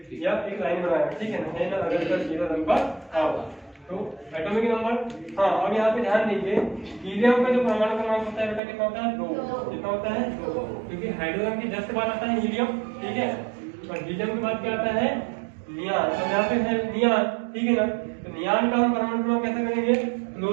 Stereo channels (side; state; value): left; drops out; at 8.6 s